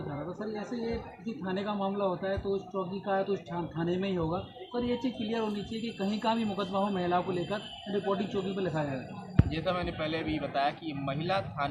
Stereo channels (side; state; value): both; identical; correlation 1.00